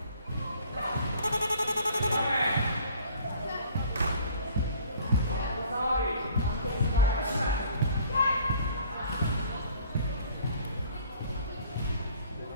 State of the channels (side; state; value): both; inverted; correlation -0.53